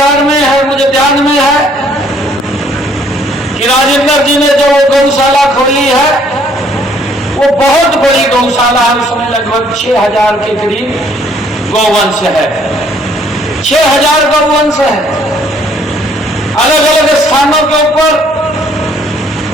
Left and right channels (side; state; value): both; normal; correlation 0.63